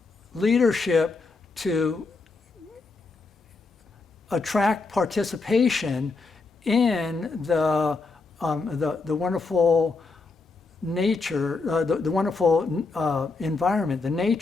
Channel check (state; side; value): quieter; right; 4.0 dB